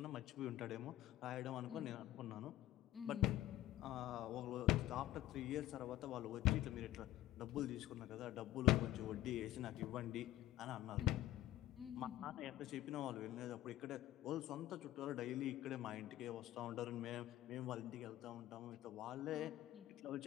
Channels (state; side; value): quieter; right; 14.8 dB